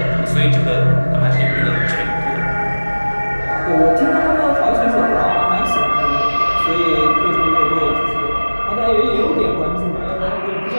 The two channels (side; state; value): both; inverted; correlation -1.00